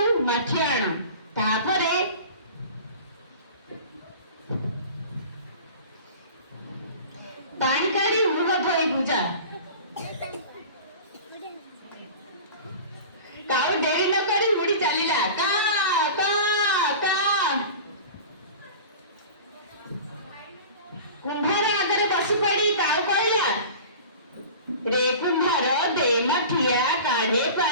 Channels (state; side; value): inverted; both; correlation -0.38